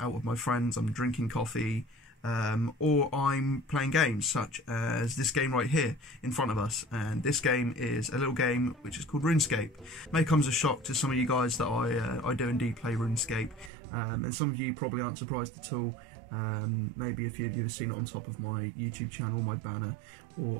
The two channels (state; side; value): drops out; left; at 13.7 s